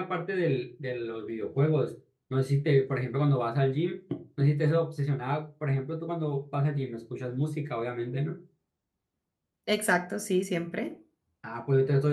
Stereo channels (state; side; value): identical; both; correlation 1.00